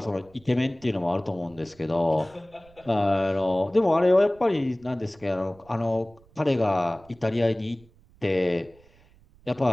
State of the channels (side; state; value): right; noise; rumble, 28 dB below the sound